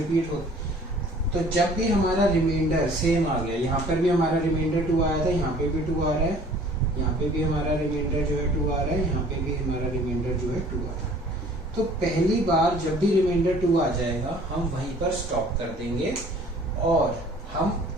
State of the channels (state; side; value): normal; both; correlation 0.52